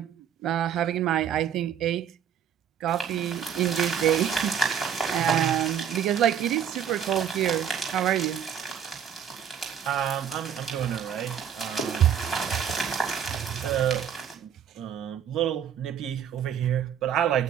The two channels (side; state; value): left; quieter; 8.6 dB